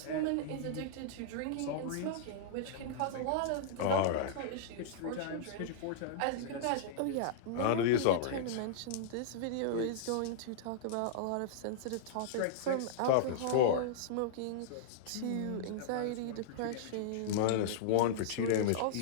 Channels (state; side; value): different; both; correlation -0.02